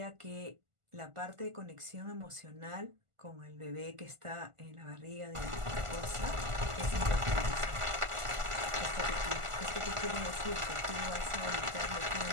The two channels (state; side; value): late; left; 1.5 ms